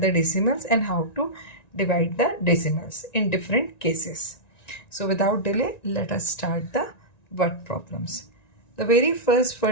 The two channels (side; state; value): right; late; 1.9 ms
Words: decimals and how to divide the decimals in different cases. So without delay, let us start the word problems. The very first